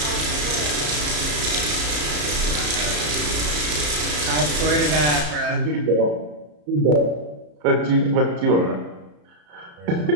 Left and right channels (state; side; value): late; left; 34 ms